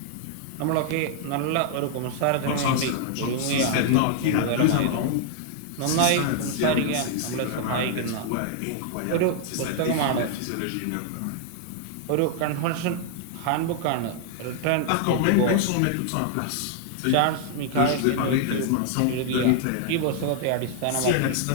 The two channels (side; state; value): both; different; correlation 0.00